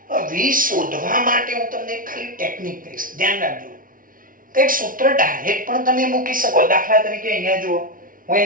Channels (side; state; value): left; late; 0.40 ms